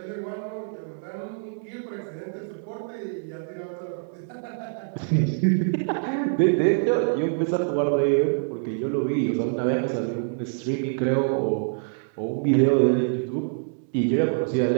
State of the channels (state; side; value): silent; left; digital silence